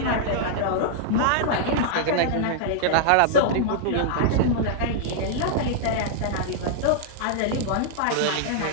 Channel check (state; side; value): different; both; correlation -0.01